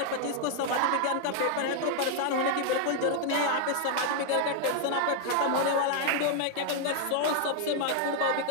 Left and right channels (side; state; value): both; different; correlation 0.00